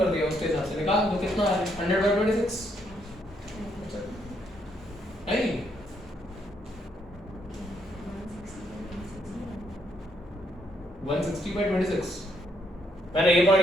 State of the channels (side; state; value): both; normal; correlation 0.74